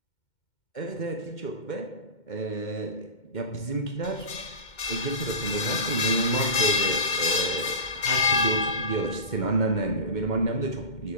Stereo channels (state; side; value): late; right; 2.1 ms